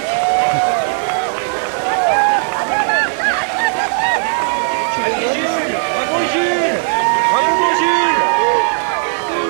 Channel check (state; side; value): silent; left; digital silence